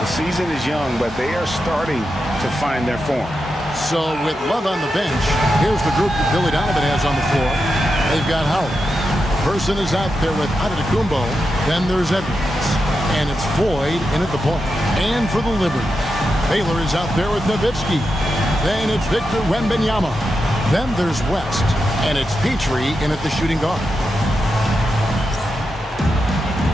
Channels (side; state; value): both; normal; correlation 0.88